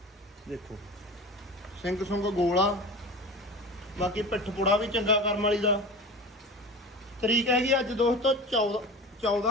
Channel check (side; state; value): both; normal; correlation 0.33